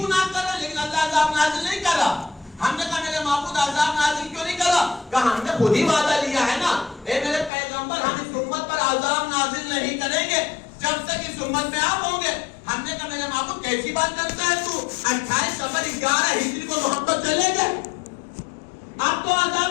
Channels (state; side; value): drops out; right; at 7.5 s